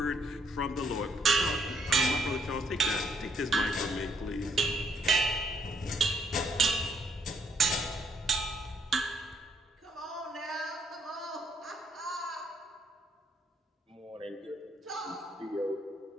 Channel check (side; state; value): both; normal; correlation 0.71